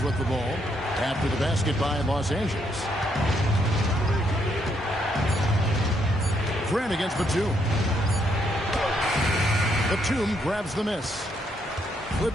with the ball after the basket by Los Angeles. Grant against Batum. Batum grabs the miss.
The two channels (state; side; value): normal; both; correlation 0.74